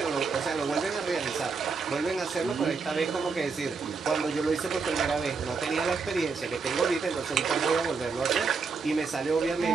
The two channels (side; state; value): left; quieter; 4.9 dB